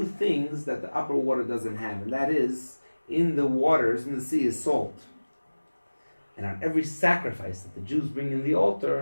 things that the upper water doesn't have. And that is, in the waters, in the sea, is salt. And on every sacrifice that the Jews bring in the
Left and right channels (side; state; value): both; inverted; correlation -1.00